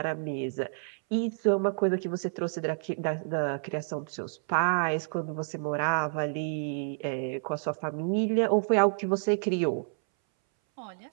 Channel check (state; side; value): silent; left; 58 dB below the other